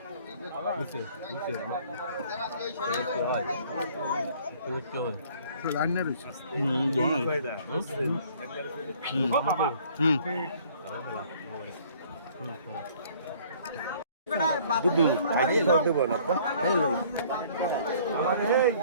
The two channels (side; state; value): both; inverted; correlation -0.56